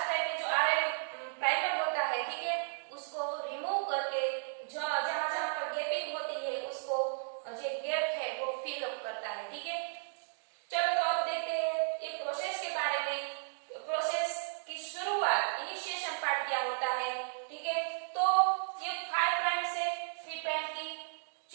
टाइप के जो आरएनए प्राइमर होता है, ठीक है, उसको रिमूव करके जो जहां जहां पर गैपिंग होती है उसको जो गैप है वो फिल अप करता है, ठीक है। चलो तो अब देखते हैं ये प्रोसेस के बारे में। प्रोसेस की शुरुआत, इनिशिएशन पार्ट क्या होता है, ठीक है। तो ये 5 प्राइम से 3 प्राइम की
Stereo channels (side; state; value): left; silent; digital silence